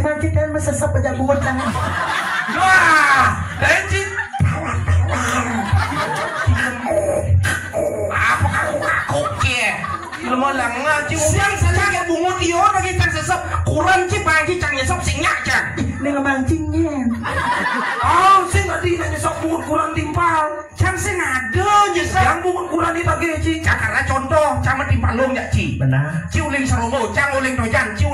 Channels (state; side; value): identical; both; correlation 1.00